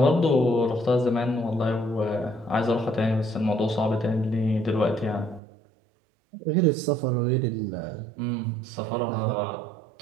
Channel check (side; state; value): left; drops out; at 5.4 s